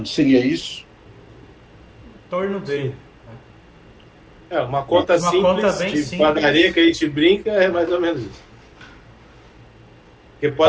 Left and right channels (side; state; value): both; identical; correlation 1.00